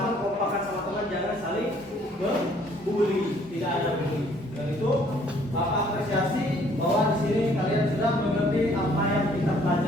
kompakan sama teman, jangan saling membuli, tidak ada bully. Dan itu Bapak apresiasi bahwa di sini kalian sudah mengerti apa yang kita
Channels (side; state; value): both; normal; correlation 0.61